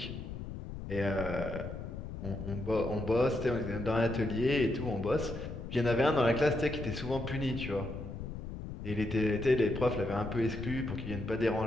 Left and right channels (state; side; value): noise; left; rumble, 8 dB below the sound